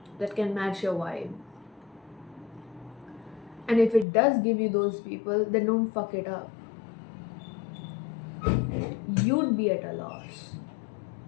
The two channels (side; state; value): right; drops out; at 4.0 s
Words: that can match your vibe. And if it does give you those people, then don't fuck it up. You'd be at a loss.